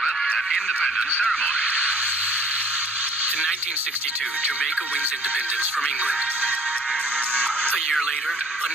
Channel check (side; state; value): both; normal; correlation 0.55